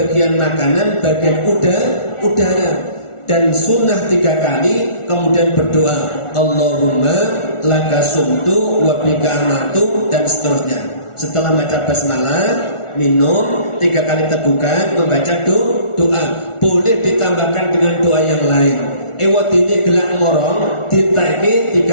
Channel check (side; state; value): right; late; 1.4 ms